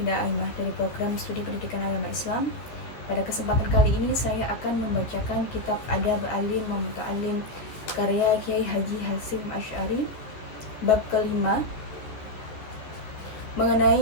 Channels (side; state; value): right; late; 14 ms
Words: Aimah dari program studi pendidikan agama Islam. Pada kesempatan kali ini saya akan membacakan kitab Adab Alim wa Muta'alim karya Kiai Haji Hasyim Asy'ari, bab kelima,